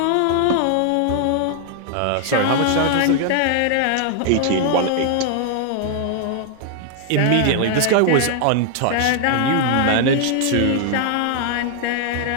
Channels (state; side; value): different; both; correlation 0.00